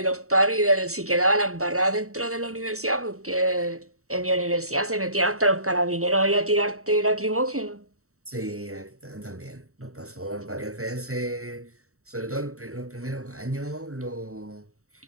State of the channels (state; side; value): late; left; 0.64 ms